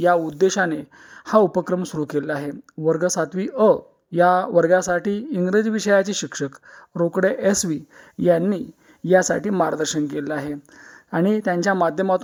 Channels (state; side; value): identical; both; correlation 1.00